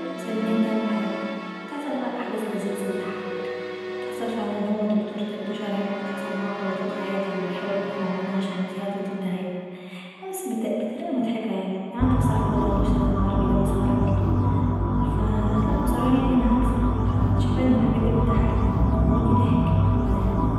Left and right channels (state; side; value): identical; both; correlation 1.00